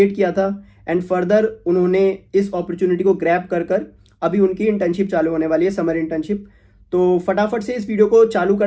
किया था एंड फर्दर उन्होंने इस अपॉर्चुनिटी को ग्रैब कर कर अभी उनकी इंटर्नशिप चालू होने वाली है, समर इंटर्नशिप। तो फटाफट से इस वीडियो को चालू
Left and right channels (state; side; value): identical; both; correlation 1.00